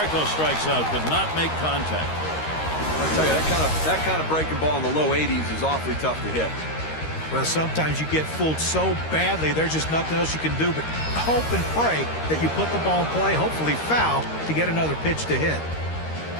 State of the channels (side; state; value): right; late; 13 ms